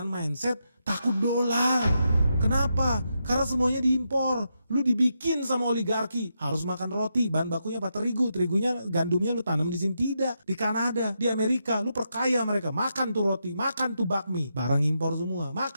mindset takut dolar. Kenapa? Karena semuanya diimpor. Lu dibikin sama oligarki, harus makan roti, bahan bakunya apa? Terigu. Terigunya, gandumnya lu tanam di sini tidak. Di Kanada, di Amerika, lu perkaya mereka. Makan tuh roti, makan tuh bakmi, barang impor semua.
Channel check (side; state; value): both; inverted; correlation -0.84